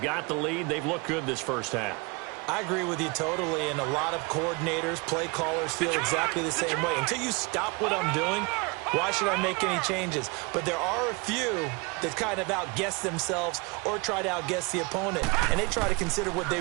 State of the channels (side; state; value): left; quieter; 28.2 dB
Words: got the lead. They've looked good this first half. I agree with you totally, and a lot of coordinators, play callers feel exactly the same way. Until you stop what I'm doing, why should I make any changes? But there are a few that kind of outguess themselves or try to outguess the opponent, and they try to consider what they